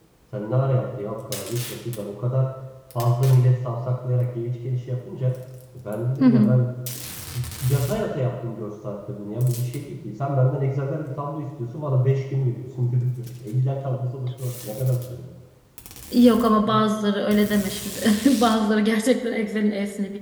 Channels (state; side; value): identical; both; correlation 1.00